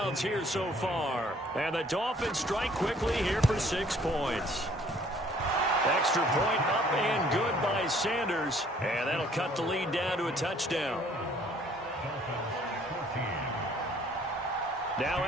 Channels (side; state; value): both; normal; correlation 0.59